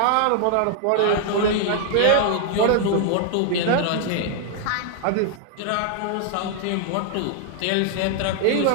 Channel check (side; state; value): both; different; correlation 0.00